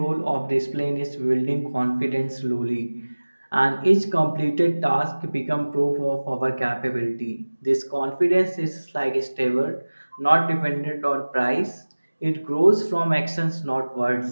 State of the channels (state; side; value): inverted; both; correlation -1.00